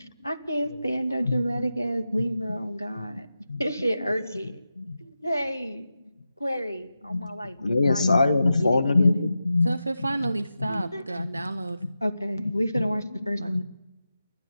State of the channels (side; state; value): both; inverted; correlation -0.91